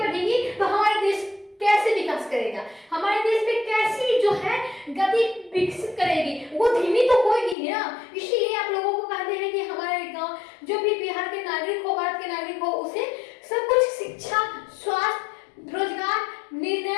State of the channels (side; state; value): right; drops out; at 7.6 s